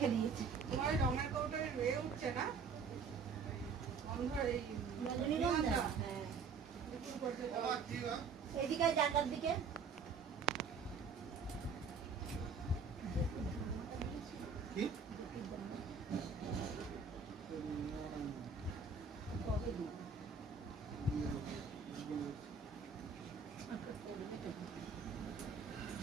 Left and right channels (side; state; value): left; quieter; 5.3 dB